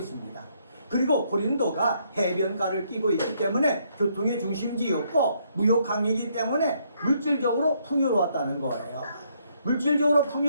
그리고 고린도가 해변가를 끼고 있기 때문에 교통의 중심지였고 무역항이기 때문에 물질적으로 풍요로웠다는 거예요. 물질적으로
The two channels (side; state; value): both; inverted; correlation -0.71